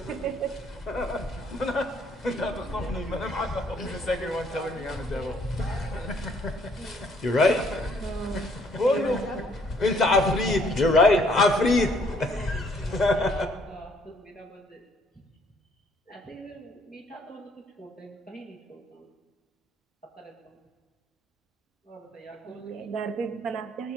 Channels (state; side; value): normal; both; correlation 0.64